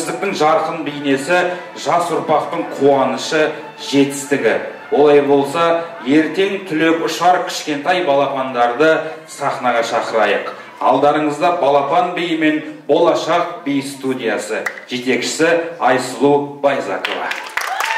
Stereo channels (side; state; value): both; identical; correlation 1.00